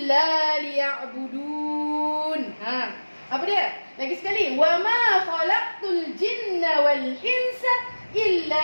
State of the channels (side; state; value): both; inverted; correlation -1.00